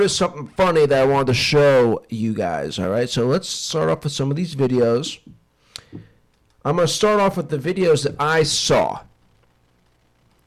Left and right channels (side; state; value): both; identical; correlation 1.00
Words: something funny that I wanted to show you guys, all right? So let's start off with some of these videos. I'm going to start off with the videos that I saw,